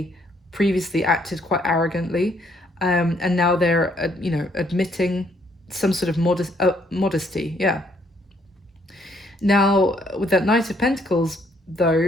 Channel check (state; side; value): normal; both; correlation 0.68